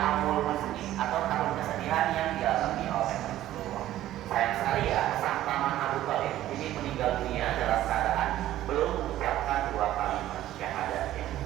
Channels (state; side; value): quieter; left; 13.7 dB